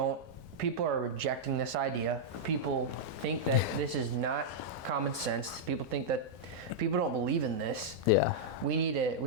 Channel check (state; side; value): normal; both; correlation -0.06